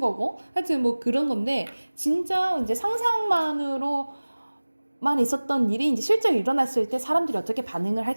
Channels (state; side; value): inverted; both; correlation -1.00